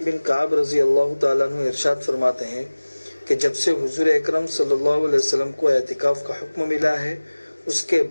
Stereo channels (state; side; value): inverted; both; correlation -1.00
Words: بن کعب رضی اللہ تعالیٰ عنہ ارشاد فرماتے ہیں کہ جب سے حضور اکرم صلی اللہ علیہ وسلم کو اعتکاف کا حکم ملا ہے، اس کے